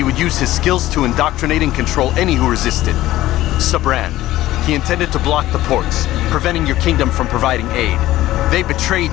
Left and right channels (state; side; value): quieter; right; 15.5 dB